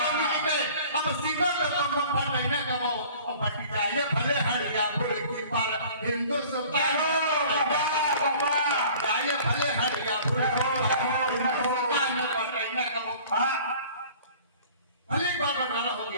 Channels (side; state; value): both; inverted; correlation -0.48